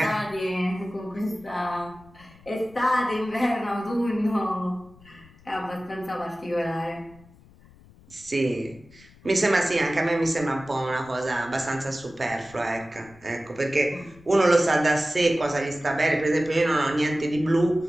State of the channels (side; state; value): left; noise; rumble, 25 dB below the sound